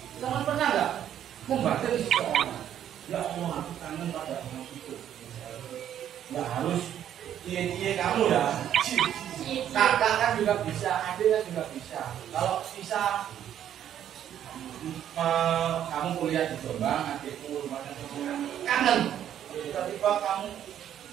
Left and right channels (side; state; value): left; quieter; 10.4 dB